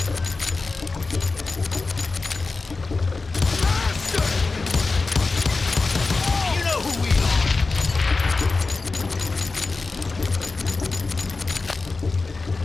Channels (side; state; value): right; quieter; 3.8 dB